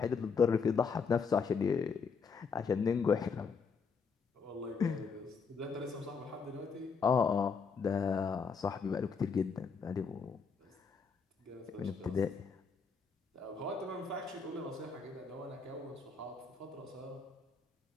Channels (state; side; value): quieter; right; 5.4 dB